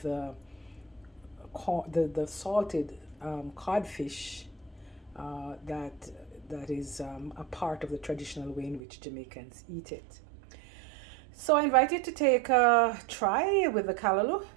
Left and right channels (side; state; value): left; drops out; at 8.8 s